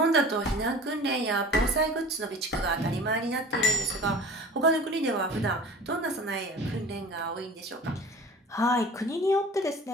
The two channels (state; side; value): normal; both; correlation 0.40